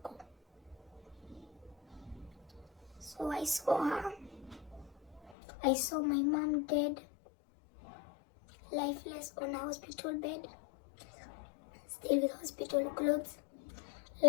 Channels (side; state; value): right; drops out; at 5.4 s